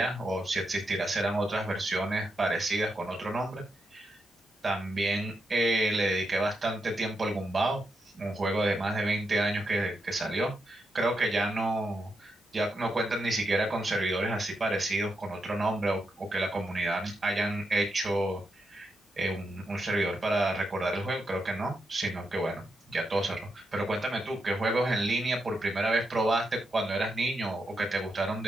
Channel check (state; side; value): normal; both; correlation 0.84